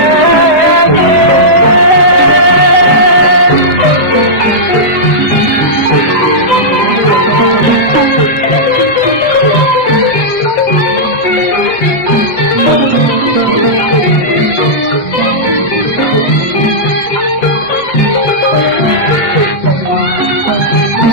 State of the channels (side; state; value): right; late; 8.0 ms